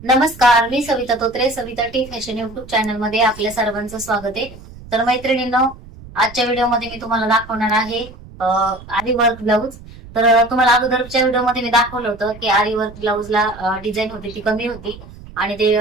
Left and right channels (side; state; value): right; noise; rumble, 18 dB below the sound